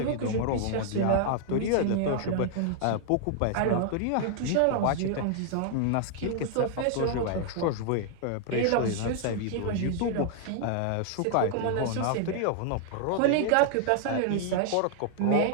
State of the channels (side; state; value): both; different; correlation 0.00